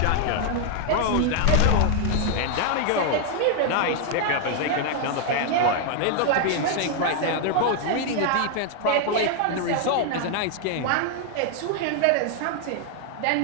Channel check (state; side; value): different; both; correlation 0.00